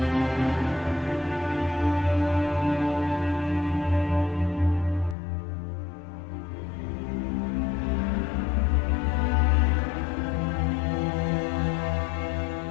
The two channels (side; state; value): right; drops out; at 5.2 s